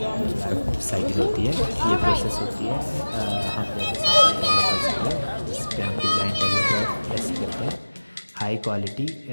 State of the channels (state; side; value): inverted; both; correlation -1.00